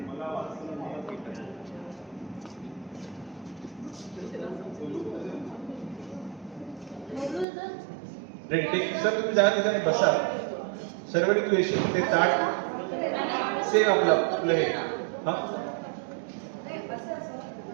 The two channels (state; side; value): drops out; left; at 7.5 s